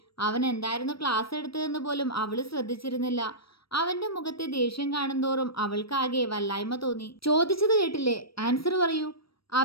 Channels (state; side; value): late; right; 0.75 ms